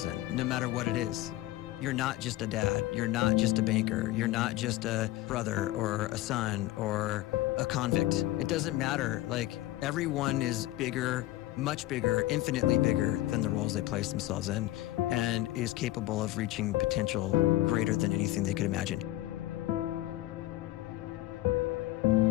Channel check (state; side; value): quieter; right; 16.4 dB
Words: in, no matter what it is. You're not just a dad, you're not just a banker, you're not just a brother or a son or a convict. It doesn't matter. Like, everyone is bigger, much bigger, infinitely bigger than the roles they place themselves in, and is capable of reaching potential greater than anything they could imagine.